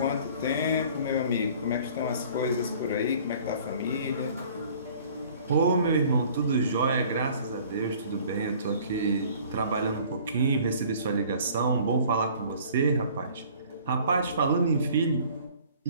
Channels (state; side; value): inverted; both; correlation -0.52